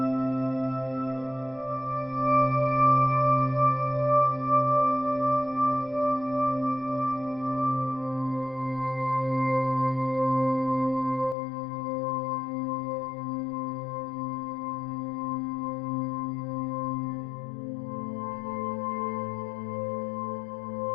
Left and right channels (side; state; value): right; drops out; at 11.4 s